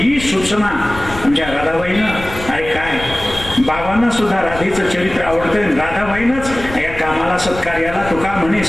सूचना आमच्या राधाबाईनं, अरे काय बाबांना सुद्धा राधेचं चरित्र आवडतं. राधाबाईनंच या कामाला सत्कार्याला तुका म्हणे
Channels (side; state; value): left; noise; rumble, 12 dB below the sound